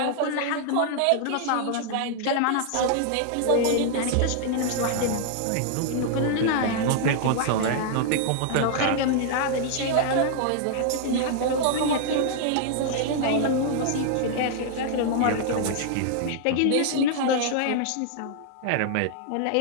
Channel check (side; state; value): both; different; correlation -0.01